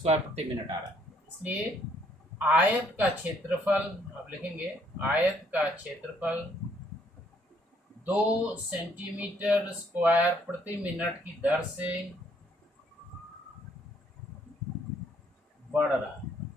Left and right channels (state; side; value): normal; both; correlation 0.67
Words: प्रति मिनट आ रहा है। इसलिए आयत का क्षेत्रफल आप लिखेंगे, आयत का क्षेत्रफल 2 सेंटीमीटर स्क्वायर प्रति मिनट की दर से बढ़ रहा है,